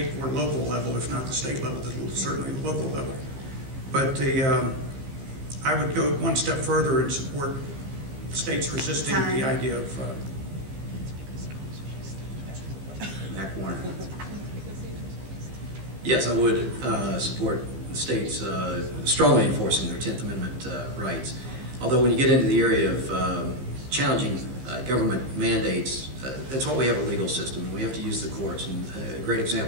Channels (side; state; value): left; late; 15 ms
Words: or local level, if not the state level, certainly the local level. But I would go one step further and support states resisting the idea of Mac Warner. Yes, I would support the states strongly enforcing their 10th Amendment rights. Although when you get into the area of challenging government mandates, that's why we have a legal system. We have to use the courts. And a great